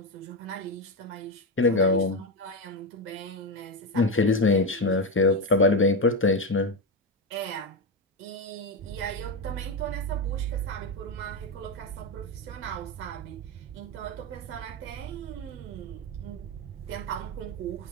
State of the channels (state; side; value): normal; both; correlation 0.12